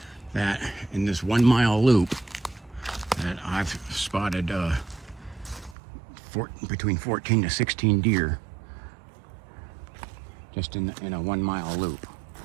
that in this 1 mile loop that I've spotted between 14 to 16 deer just in a 1 mile loop.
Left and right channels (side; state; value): left; drops out; at 5.8 s